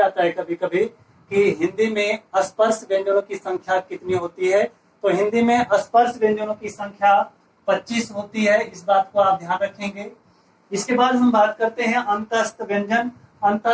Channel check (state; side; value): identical; both; correlation 1.00